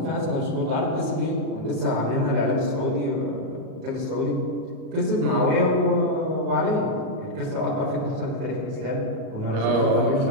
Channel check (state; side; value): late; left; 38 ms